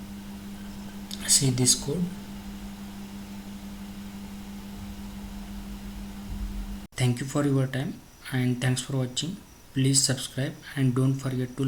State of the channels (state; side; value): identical; both; correlation 1.00